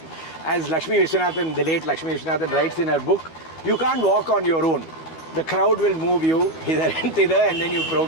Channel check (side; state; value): right; late; 12 ms